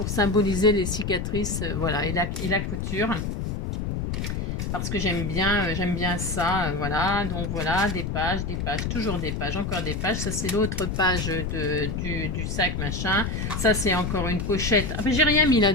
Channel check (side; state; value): left; noise; rumble, 3 dB below the sound